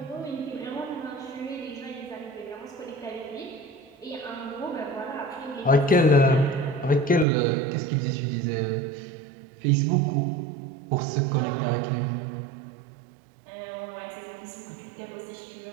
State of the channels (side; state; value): left; drops out; at 7.2 s